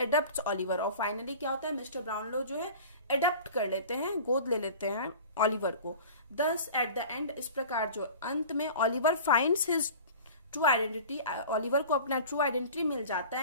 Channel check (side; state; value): both; inverted; correlation -0.40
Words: ऑलिवर, और फाइनली क्या होता है, मिस्टर ब्राउनलो जो है एडप्ट कर लेते हैं, गोद ले लेते हैं ऑलिवर को। दस एट द एंड, इस प्रकार जो अंत में Oliver finds his true identity, Oliver को अपना ट्रू आइडेंटिटी मिल जाता